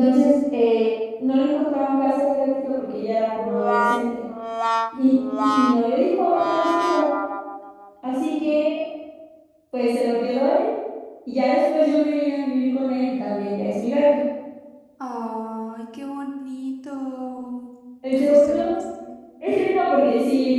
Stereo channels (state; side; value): identical; both; correlation 1.00